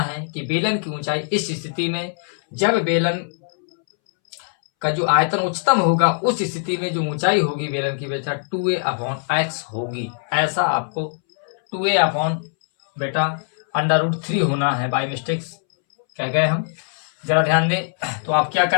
कि बेलन की ऊंचाई इस स्थिति में, जब बेलन का जो आयतन उच्चतम होगा उस स्थिति में जो ऊंचाई होगी बेलन की बेटा 2a/x होगी। ऐसा आपको 2a/ बेटा √3 होना है, बाई मिस्टेक्स कह गए हम, जरा ध्यान दें। तो आप क्या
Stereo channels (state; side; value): silent; right; 64 dB below the other